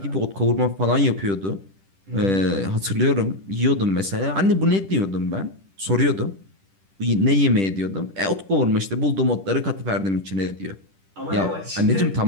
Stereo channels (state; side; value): late; left; 10 ms